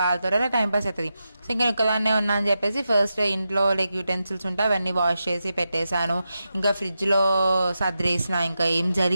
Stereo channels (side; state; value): both; inverted; correlation -0.89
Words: వాళ్ళతో అలా టైం పాస్ అవుతుంది. సో ఇంకా ఒక్కదాన్నే ఉన్నా అని చెప్పేసి ఫస్ట్ ఇంట్లో లైక్ యూటెన్సిల్స్ ఉంటే అవన్నీ వాష్ చేసి పెట్టేశాను. ఇంకా ఫ్రిడ్జ్లో సర్దేసిన, ఇంకా ఏం జరి